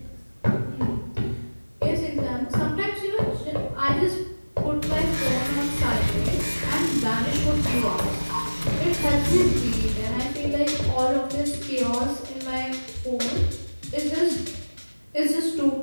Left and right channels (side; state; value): both; inverted; correlation -1.00